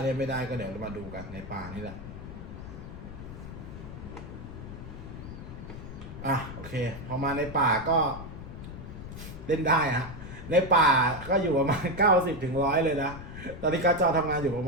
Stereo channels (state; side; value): noise; left; rumble, 11 dB below the sound